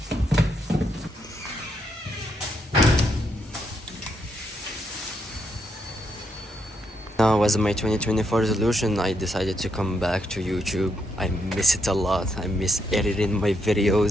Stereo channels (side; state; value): both; normal; correlation 0.78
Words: now, as my 2024 resolution, I decided to come back to YouTube. I miss it a lot. I miss editing my